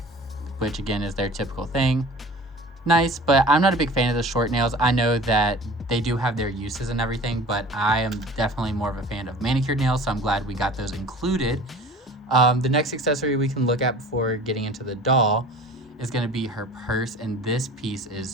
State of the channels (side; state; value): both; normal; correlation 0.42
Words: which again is their typical thing. Nice, but I'm not a big fan of the short nails. I know that they do have their uses and everything, but I am definitely more of a fan of manicured nails, so I'm glad we got those included. The next accessory we can look at before getting into the doll is going to be her purse, and this piece